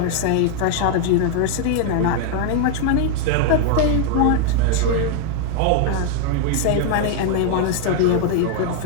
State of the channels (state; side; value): different; both; correlation 0.00